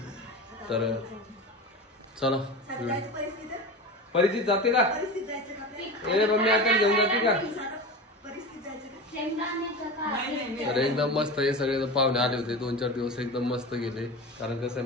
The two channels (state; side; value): normal; both; correlation 0.28